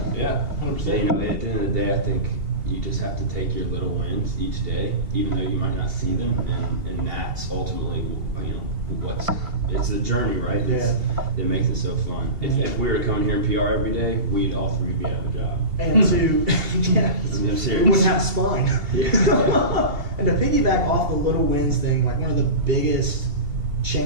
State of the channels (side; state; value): left; late; 2.7 ms